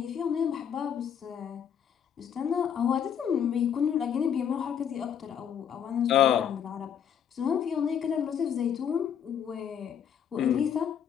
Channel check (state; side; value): quieter; right; 8.5 dB